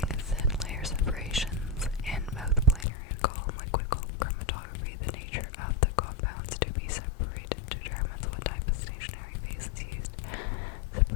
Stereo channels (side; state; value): right; drops out; at 2.9 s